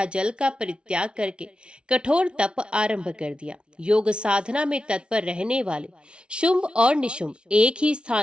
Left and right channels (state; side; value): late; left; 0.057 ms